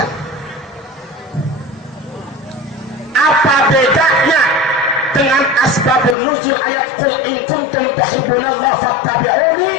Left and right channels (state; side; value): drops out; right; at 6.2 s